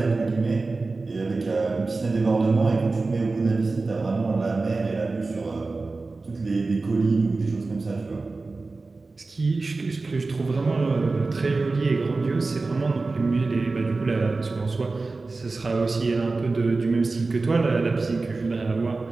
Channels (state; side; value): quieter; left; 3.7 dB